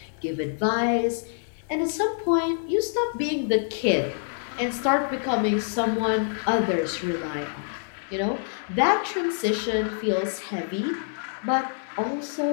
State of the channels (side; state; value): right; silent; 58 dB below the other